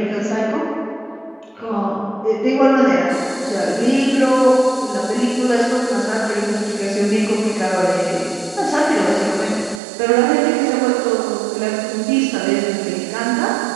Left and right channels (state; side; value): drops out; left; at 9.8 s